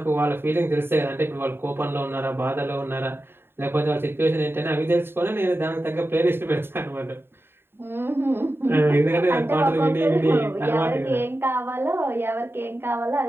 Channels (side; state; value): left; late; 0.11 ms